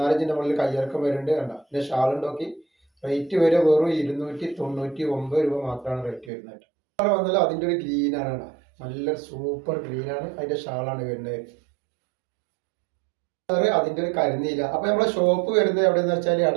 ഇഞ്ചിൻ്റെ മുകളിൽ കയ്യിറക്കം വരുന്നുണ്ട്. കണ്ട ഇതിൻ്റെ ഷാൾ നോക്കി. റേറ്റ് വരെ വെറും 299 രൂപ മാത്രമാണ് റേറ്റ് വരുന്നത്. കളർ വന്നാലും അതിൻ്റെ ഒരു ഗ്രീനാണ്. നല്ല സൂപ്പർ ഗ്രീനാണ്. അതിൻ്റെ ഷാളാണ് വരുന്നത്. അതിന്റെ ഒരു കരിനീല. അപ്പൊ നമ്മളെ ഷോപ്പ് വരുന്നത് എവിടെയെന്ന് വെച്ചാൽ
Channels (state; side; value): drops out; left; at 6.3 s